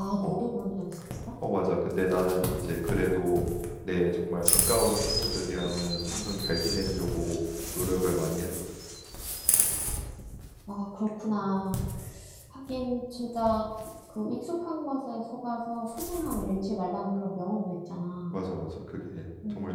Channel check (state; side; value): identical; both; correlation 1.00